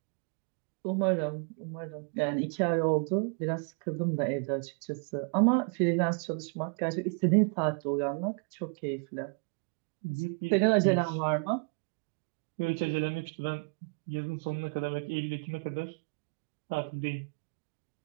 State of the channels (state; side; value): quieter; left; 37.0 dB